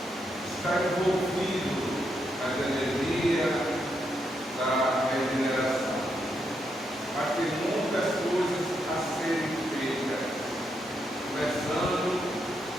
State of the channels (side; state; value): both; normal; correlation 0.80